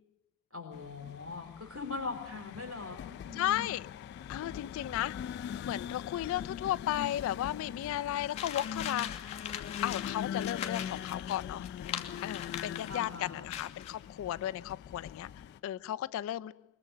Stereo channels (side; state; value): right; quieter; 10.5 dB